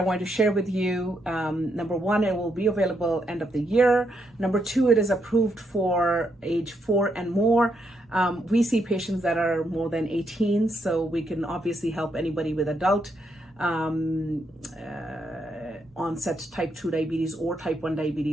want to share with you. Number one, it will be available end of the year. Number two, it is approved for age 4 and more. We see patients that are more than 18, so we can obviously help anybody with adult onset type 2 diabetes or type 1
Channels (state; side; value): normal; both; correlation 0.79